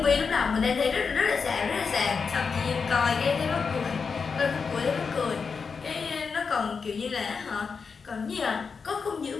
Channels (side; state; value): right; quieter; 5.4 dB